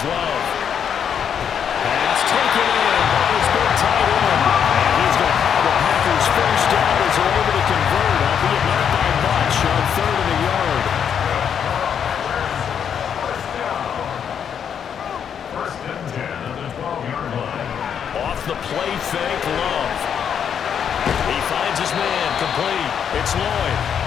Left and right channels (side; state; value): right; quieter; 8.0 dB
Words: Love. Pass taken in. He's been tight end. And he's going to have the Packers first down as they're able to convert, albeit not by much, on 3rd and a yard. The play fake, Love. He finds his man, complete. It's Lloyd.